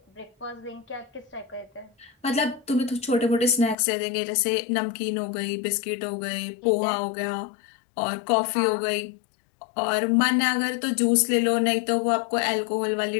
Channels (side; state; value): right; drops out; at 3.8 s